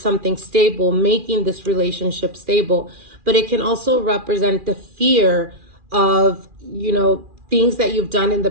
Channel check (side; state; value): left; late; 2.4 ms